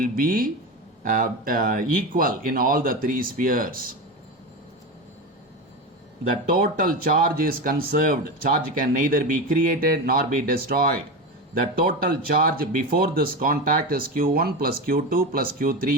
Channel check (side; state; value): both; normal; correlation 0.21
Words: be equal in all the 3 spheres. The total charge is conserved. Charge can neither be created nor be destroyed. The total charge before this contact is Q1 plus Q2 plus